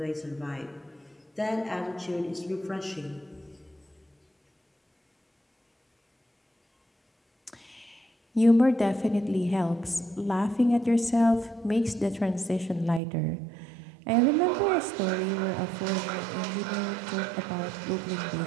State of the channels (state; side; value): drops out; left; at 13.0 s